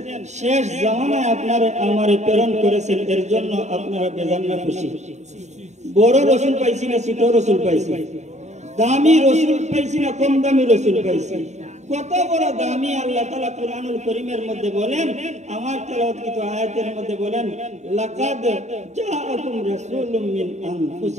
শেষ জামানায় আপনারে আমারে প্রেরণ করেছেন। এর জন্য আপনারা বেজান না খুশি? বড় রাসূল পাইছি না ছোট রাসূল পাইছি? দামি রাসূল পাইছি না কম দামি রাসূল পাইছি? কত বড় দামি! আল্লাহ তাআলা কুরআনুল কারীমের মধ্যে বলেন, আমার তেলাওয়াতকৃত আয়াতের মধ্যে বলেন, লাকাদ জাআকুম রাসূলুম মিন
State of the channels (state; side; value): late; left; 0.33 ms